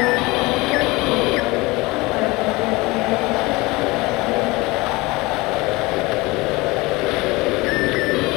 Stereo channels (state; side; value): quieter; right; 22.7 dB